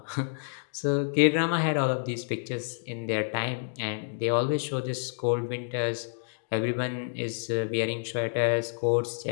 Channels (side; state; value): right; silent; digital silence